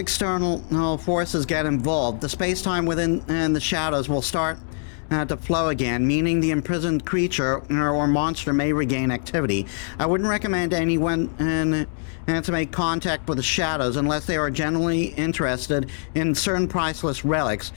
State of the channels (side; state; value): right; silent; digital silence